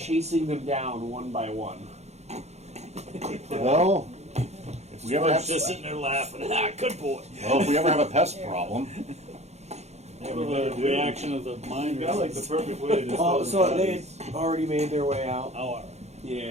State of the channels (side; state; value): left; late; 0.32 ms